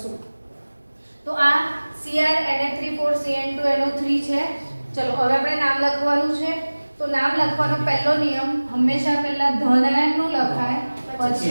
તો આ Cr Na3 Cn2 NO3 છે. ચલો હવે આપણે નામ લખવાનું છે. તો નામ લખવાનો પહેલો નિયમ હંમેશા પહેલા ધનાયનનું લખાય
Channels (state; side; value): inverted; both; correlation -1.00